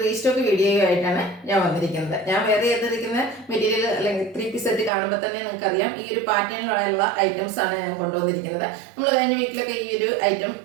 റീസ്റ്റോക്ക് വീഡിയോയുമായിട്ടാണ് ഞാൻ വന്നിരിക്കുന്നത്. ഞാൻ വേറെ ചെയ്തിരിക്കുന്ന മെറ്റീരിയൽ അല്ലെങ്കിൽ 3 സെറ്റ് കാണുമ്പോൾ തന്നെ നിങ്ങൾക്കറിയാം ഈ ഒരു പാറ്റേണിലുള്ള ഐറ്റംസ് ആണ് ഞാൻ കൊണ്ടുവന്നിരിക്കുന്നത്. നമ്മൾ കഴിഞ്ഞ വീക്കിലൊക്കെ ഈ ഒരു ഐറ്റം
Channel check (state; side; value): drops out; left; at 4.9 s